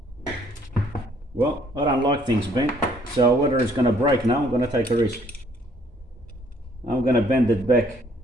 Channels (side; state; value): both; normal; correlation 0.63